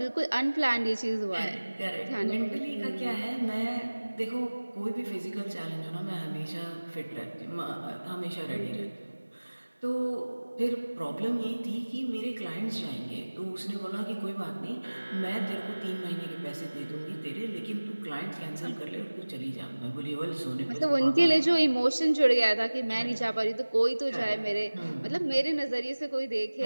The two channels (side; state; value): both; inverted; correlation -1.00